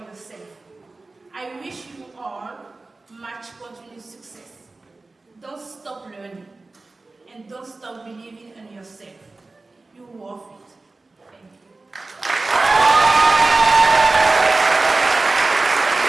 yourself. I wish you all much continued success. Don't stop learning, and don't stop believing in yourself. You're worth it. Thank you.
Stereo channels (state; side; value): quieter; left; 3.4 dB